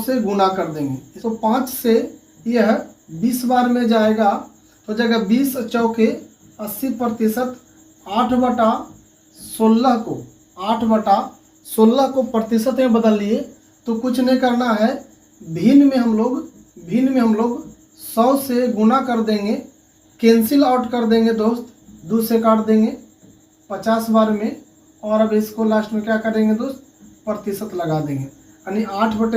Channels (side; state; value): both; identical; correlation 1.00